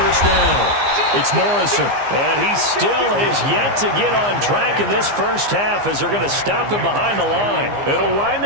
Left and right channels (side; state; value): left; late; 15 ms